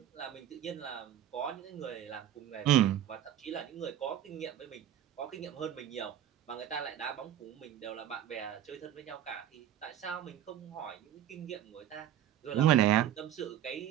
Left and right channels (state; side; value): quieter; left; 11.2 dB